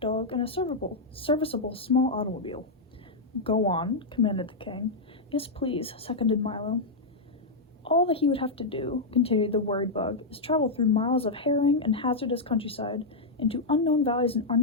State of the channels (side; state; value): right; quieter; 3.2 dB